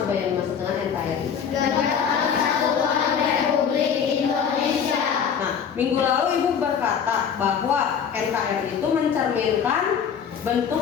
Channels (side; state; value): right; quieter; 7.4 dB